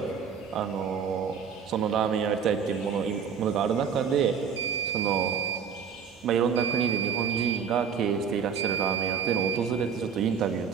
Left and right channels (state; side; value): quieter; left; 6.9 dB